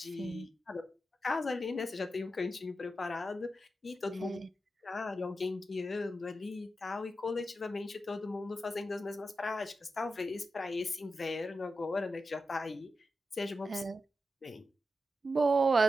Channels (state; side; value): normal; both; correlation 0.89